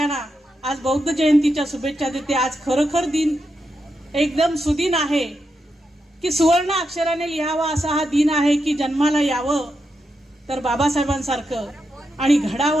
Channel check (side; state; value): both; normal; correlation 0.85